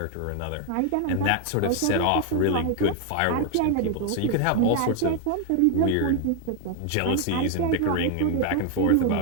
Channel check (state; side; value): different; both; correlation 0.01